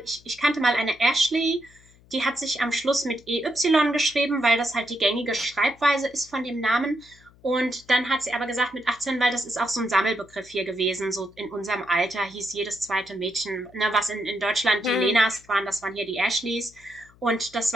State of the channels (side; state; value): left; noise; hum, 27 dB below the sound